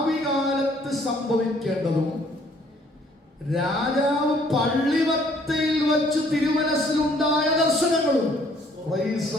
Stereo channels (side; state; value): both; normal; correlation 0.61